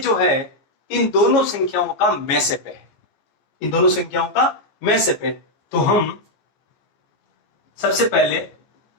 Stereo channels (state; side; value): late; right; 14 ms